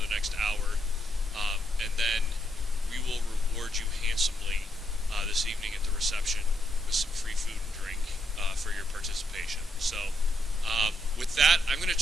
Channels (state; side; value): normal; both; correlation 0.78